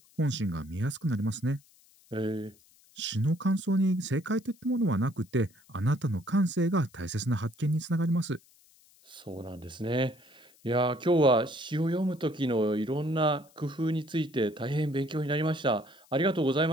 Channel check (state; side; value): noise; left; hiss, 29 dB below the sound